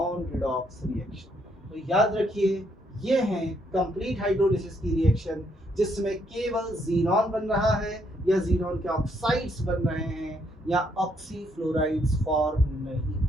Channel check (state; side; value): normal; both; correlation 0.72